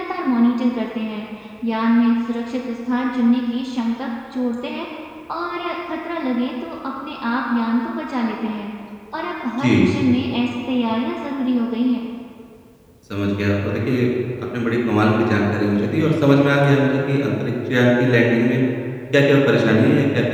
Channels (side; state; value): both; identical; correlation 1.00